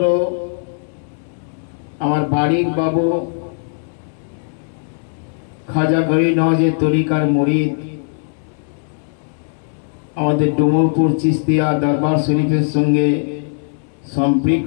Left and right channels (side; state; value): right; silent; 67 dB below the other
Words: আমার বাড়ির বাবু খাজা গরিব নওয়াজের তরিকার মুরিদ আমাদের ডুমরপুর চিস্তিয়া দরবার শরীফের সঙ্গে